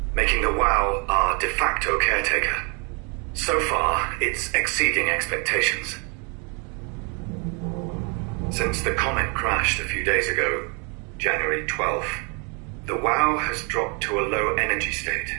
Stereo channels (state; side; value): quieter; left; 34.2 dB